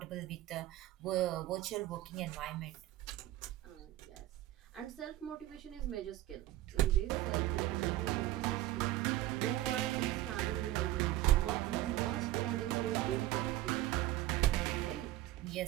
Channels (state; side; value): quieter; left; 15.3 dB